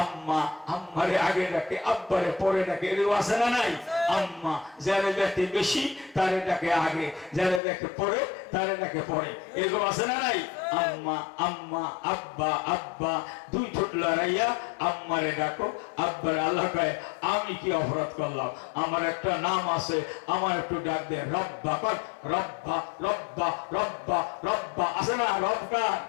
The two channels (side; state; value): right; drops out; at 7.6 s